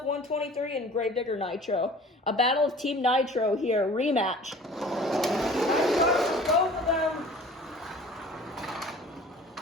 123 and Gravedigger Nitro. A battle of Team Nitro here, rematch. Nice start for both of them.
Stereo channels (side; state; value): both; normal; correlation 0.46